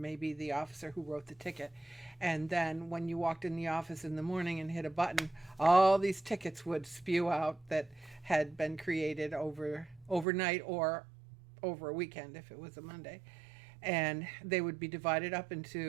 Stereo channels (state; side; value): drops out; left; at 10.2 s